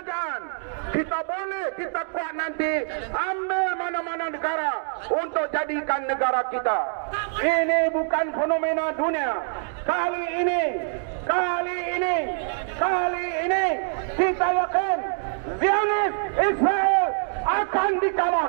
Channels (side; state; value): left; silent; digital silence